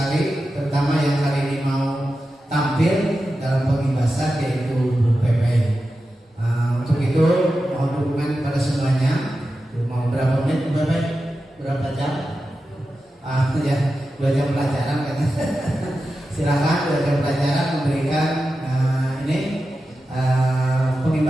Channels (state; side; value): normal; both; correlation 0.92